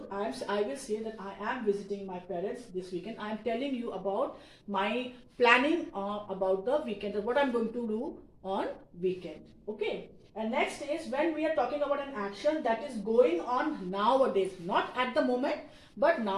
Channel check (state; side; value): identical; both; correlation 1.00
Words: I will say that I am visiting my parents this weekend. I am telling you about my planning about the weekend, or what I'm going to do on weekend. Okay. And next is when we are talking about an action that is going on nowadays, not at the moment, but